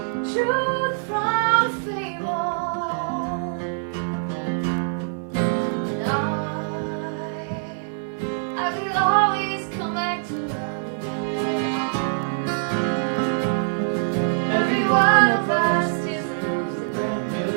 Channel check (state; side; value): silent; left; digital silence